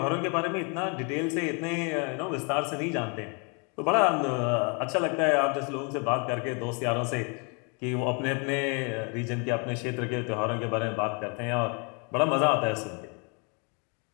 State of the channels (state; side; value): quieter; right; 34.6 dB